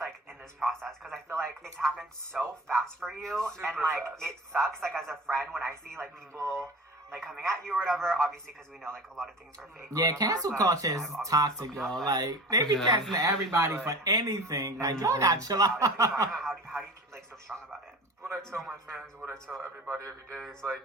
like in this process? Because I feel like it's happened so fast for you, and Super like fast. it sucks. Like as a friend, when I see like people like coming at you or whatever, obviously because we know like a lot of things are fake. or Yeah, whatever, cancel but culture is I've obviously toxic, spoken y'all. up, but Like, they be Yeah. canceling everybody for anything. Like, y'all got chill out. how do you keep like so strong about it? What I tell my fans, what I tell everybody every day is like,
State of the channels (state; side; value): normal; both; correlation 0.37